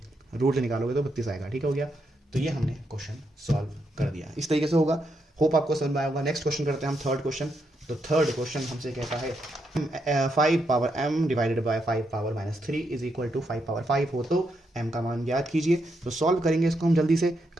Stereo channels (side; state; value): both; normal; correlation 0.80